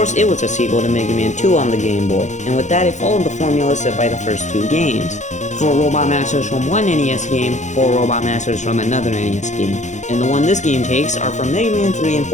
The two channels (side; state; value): right; late; 0.35 ms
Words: it was a sequel to Mega Man 2 on the Game Boy, and with that it followed the formula set by the first two games. 4 Robot Masters from one NES game, 4 Robot Masters from another NES game. And the one this game takes are from Mega Man 3 and